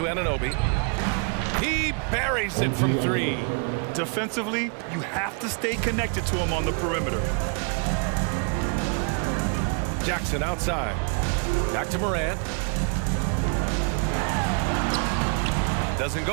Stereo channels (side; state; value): left; quieter; 39.3 dB